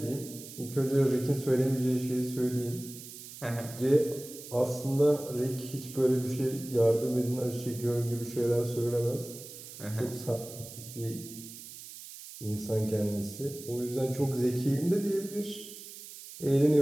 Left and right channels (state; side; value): noise; right; hiss, 14 dB below the sound